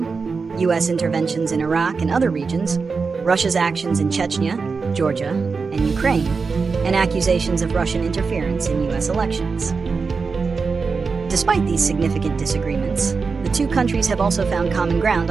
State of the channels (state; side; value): quieter; left; 4.8 dB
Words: U.S. interventions in Iraq and other regions, Russia's actions in Chechnya, Georgia, and Ukraine, and accusations of Russian interference in U.S. elections. Despite these significant disagreements, the two countries have also found common ground